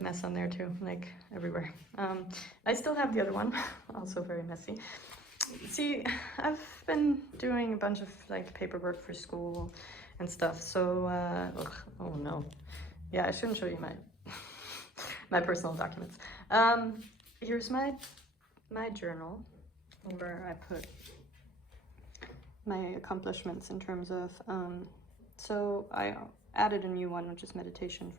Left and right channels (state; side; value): normal; both; correlation 0.51